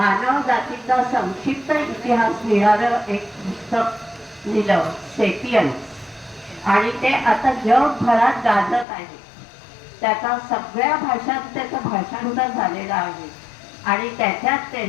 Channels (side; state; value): right; drops out; at 8.8 s